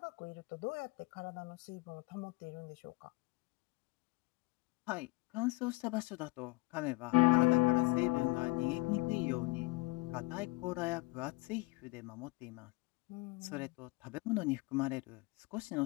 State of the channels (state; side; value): quieter; right; 23.7 dB